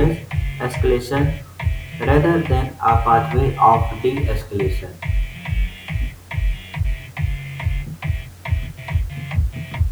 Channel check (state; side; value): identical; both; correlation 1.00